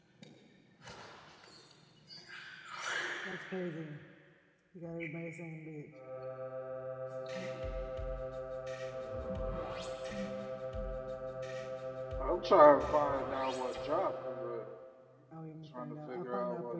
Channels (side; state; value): both; identical; correlation 1.00